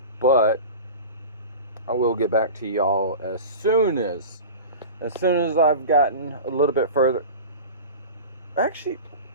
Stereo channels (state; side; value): inverted; both; correlation -0.33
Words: but I will get back to y'all as soon as I've gotten a little bit further. Actually,